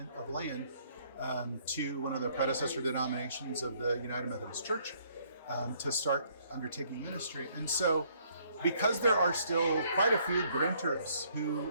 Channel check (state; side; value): inverted; both; correlation -0.65